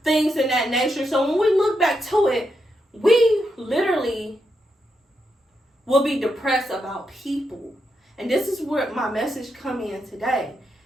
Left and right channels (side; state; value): both; normal; correlation 0.83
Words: things in that nature. So when we look back to it, we literally will be depressed about people. And this is where my message come in today.